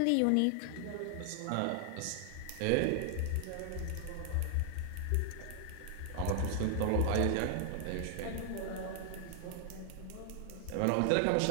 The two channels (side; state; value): both; different; correlation 0.00